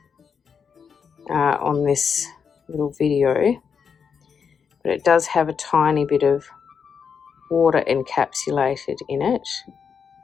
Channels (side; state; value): right; quieter; 6.5 dB